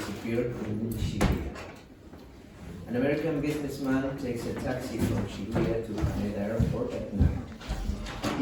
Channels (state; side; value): identical; both; correlation 1.00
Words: in Shibuya. An American businessman takes a taxi from Shibuya to Haneda Airport at night.